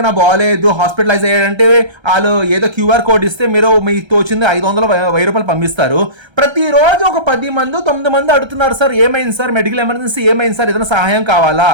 బాగాలేదు హాస్పిటలైజ్ అయ్యాడంటే వాళ్ళు ఏదో QR కోడ్ ఇస్తే మీరు మీకు తోచింది 500-1000 రూపాయలు పంపిస్తారు. ప్రతిరోజు ఒక 10 మంది 9 మంది అడుగుతున్నారు, సార్ ఏమైంది సార్, మెడికల్ ఎమర్జెన్సీ ఏమైంది సార్, ఏదైనా సహాయం కావాలా,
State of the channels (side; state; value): left; late; 1.3 ms